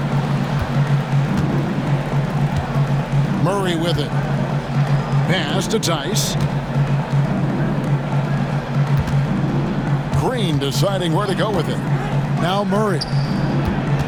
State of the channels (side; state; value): both; identical; correlation 1.00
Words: Murray with it. Pass to Tice. Green deciding where to go with it. Now Murray.